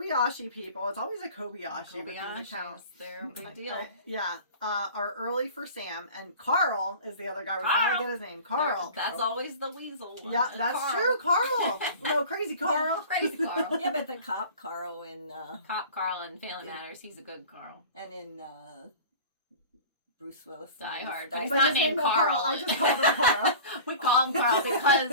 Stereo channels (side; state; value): both; inverted; correlation -0.40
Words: people, it's always a Kobayashi because it counts. They're a big deal. Yeah. Are early for Sam, and Carl is the other guy. We finally get his name. Carl. That's always the weasel. Yeah, that's true. Carl. No, crazy Carl. Crazy Carl. Yeah, but the cop Carl in... Cop Carl in Family Matters, he's a good Carl. And in... Bruce Willis. Die Hard. But He's not named Carl. I just called him Carl. We call him Carl